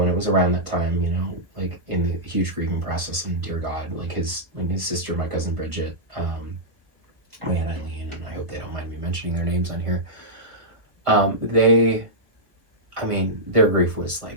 and it was around that time, in the huge grieving process. And dear God, his sister, my cousin Bridget, my Aunt Eileen, and I hope they don't mind me mentioning their names on here. Their grief was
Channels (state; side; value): late; left; 1.5 ms